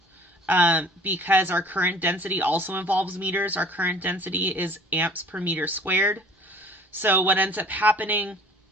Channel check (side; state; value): both; normal; correlation 0.50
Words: because our current density also involves meters. Our current density is amps per meter squared. So what ends up happening